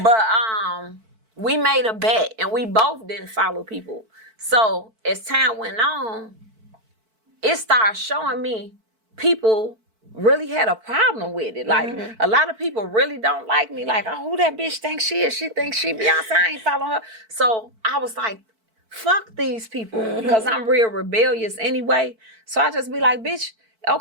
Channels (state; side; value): late; left; 4.5 ms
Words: But we made a bet and we both didn't follow people. So as time went on, it started showing me people really had a problem with it. Like a lot of people really don't like me. Like, oh, who that bitch thinks she is? She thinks she Beyonce. I ain't following her. So I was like, fuck these people because I'm real rebellious anyway. So I just be like, bitch,